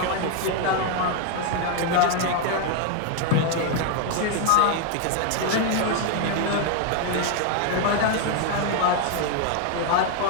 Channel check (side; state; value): both; different; correlation 0.00